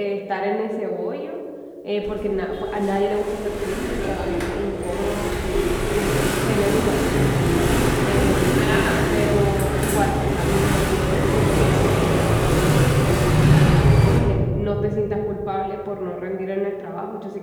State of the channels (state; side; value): identical; both; correlation 1.00